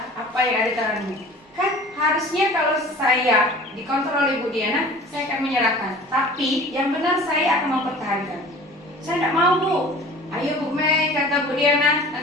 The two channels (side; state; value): both; normal; correlation 0.43